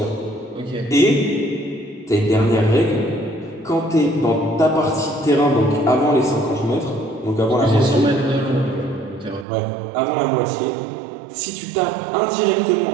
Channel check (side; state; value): left; drops out; at 9.5 s